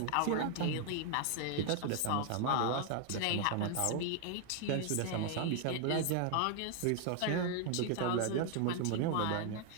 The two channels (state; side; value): different; both; correlation 0.00